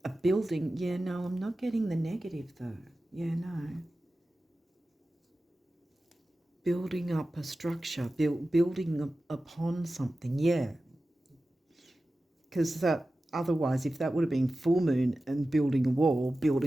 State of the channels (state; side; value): normal; both; correlation 0.95